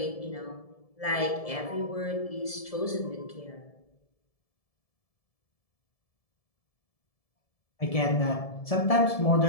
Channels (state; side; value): late; right; 1.7 ms